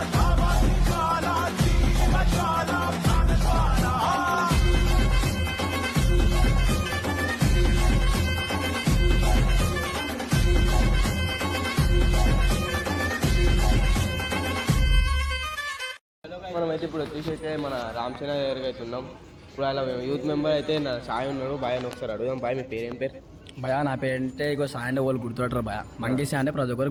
దావాగ్ని జ్వాల జీవ జ్వాల ప్రాణ జ్వాల మనమైతే ఇప్పుడు వచ్చేసి మన రామచంద్ర దగ్గరికి అయితే ఉన్నాం. ఇప్పుడు అలా యూత్ మెంబర్ అయితే నా సాయి ఉన్నాడు. బాయ్ అని ఒకసారి అడుగుదాం. బాయ్ మీ పేరు ఏం పేరు? భయ నా పేరంటే ఇగో సాయి అంటే వాళ్ళు గుర్తుపడతారు భయ. మంకీ సాయి అంటే ప్రతి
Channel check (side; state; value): both; identical; correlation 1.00